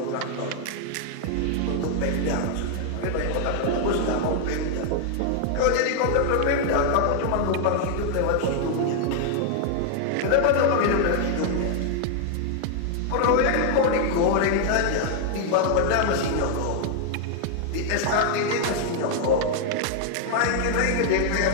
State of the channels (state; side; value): different; both; correlation 0.00